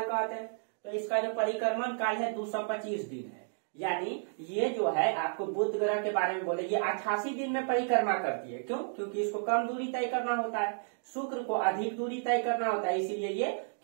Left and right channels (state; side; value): silent; left; digital silence